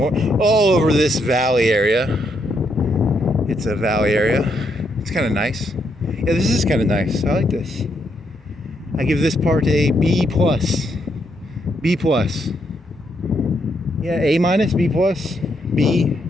this valley area. It's a valley area. It's kind of nice. Yeah, this is kind of nice. I like this. I give this part a B+. B+. Yeah, A-, B+, B. I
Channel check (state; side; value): normal; both; correlation 0.77